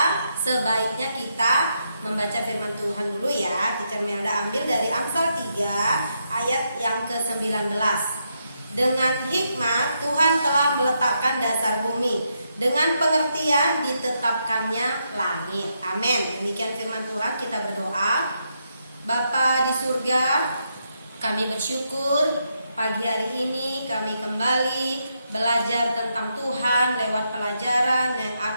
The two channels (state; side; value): inverted; both; correlation -0.81